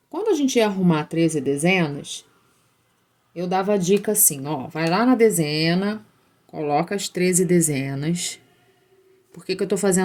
Quando a gente ia arrumar 13 dezenas, eu dava a dica assim, ó, vai lá na dezena, coloca as 13 dezenas. Por que eu tô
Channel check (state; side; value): identical; both; correlation 1.00